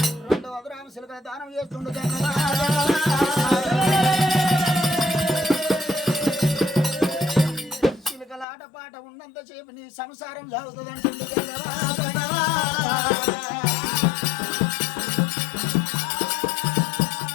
2 అదురామ సిలుకల దానం చేస్తుండగా ఆటపాట ఉన్నంతసేపు నీ సంసారం సాగుతుందంటుంది.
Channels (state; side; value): drops out; right; at 8.5 s